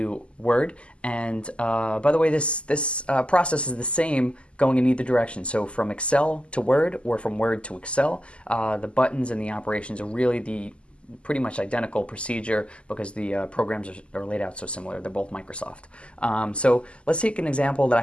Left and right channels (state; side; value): late; right; 0.054 ms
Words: Word. And by the way, this process is the same going in either direction. So from Excel to Word or from Word to Excel, the buttons and the operations are really the pretty much identical procedure because the programs are laid out so similar. They're both Microsoft. So let's take an example that I